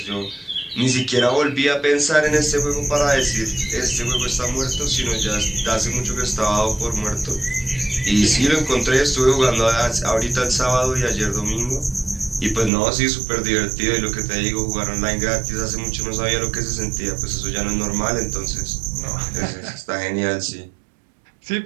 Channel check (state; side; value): drops out; left; at 12.7 s